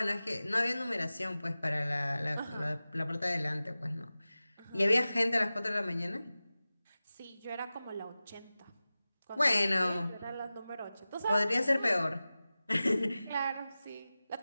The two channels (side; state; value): both; inverted; correlation -0.96